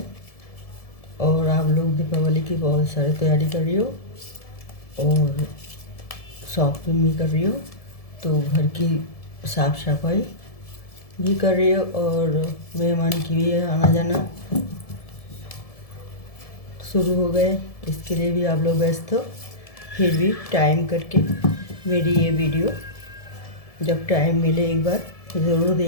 और आप लोग दीपावली की बहुत सारी तैयारी कर रही हो और शॉपिंग भी कर रही हो, तो घर की साफ़ सफाई भी कर रही हो और मेहमान की भी आना जाना शुरू हो गए। इसके लिए भी आप लोग व्यस्त हो, फिर भी टाइम करके मेरी ये वीडियो जब टाइम मिले एक बार ज़रूर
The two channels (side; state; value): right; late; 1.7 ms